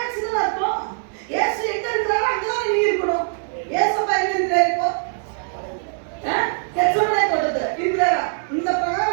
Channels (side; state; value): left; silent; digital silence